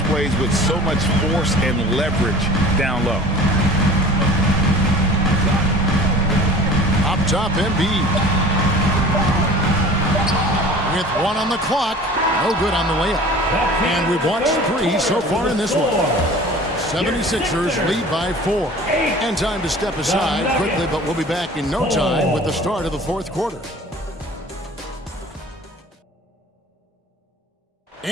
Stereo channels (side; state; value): both; normal; correlation 0.43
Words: plays with so much force and leverage down low. Up top, Embiid. With 1 on the clock. No good on the layup. And we've watched 3 so far in this one. 76ers lead by 4. And time to step aside quickly, but we'll be back in no time with the start of the fourth quarter.